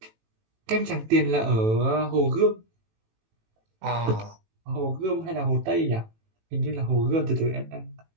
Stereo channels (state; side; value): late; left; 18 ms